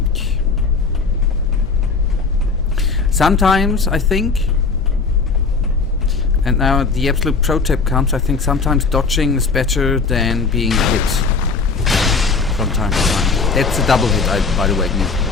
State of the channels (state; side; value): quieter; right; 4.5 dB